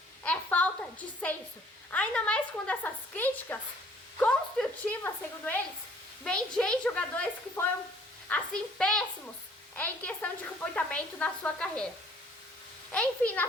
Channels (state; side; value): normal; both; correlation 0.58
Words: é falta de senso. Ainda mais quando essas críticas construtivas, segundo eles, vem de ex-jogadores que foram, assim, péssimos em questão de comportamento na sua carreira. Enfim,